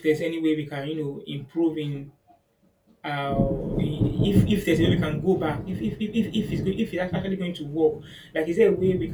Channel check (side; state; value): both; identical; correlation 1.00